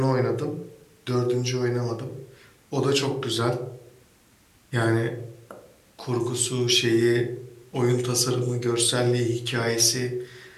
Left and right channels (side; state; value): both; identical; correlation 1.00